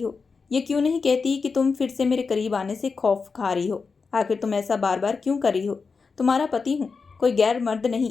हो। ये क्यों नहीं कहती कि तुम फिर से मेरे करीब आने से खौफ खा रही हो? आखिर तुम ऐसा बार बार क्यों कर रही हो? तुम्हारा पति हूँ, कोई गैर मर्द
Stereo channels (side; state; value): right; quieter; 4.9 dB